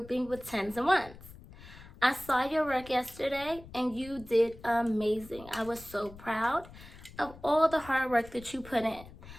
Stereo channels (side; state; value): left; noise; rumble, 18 dB below the sound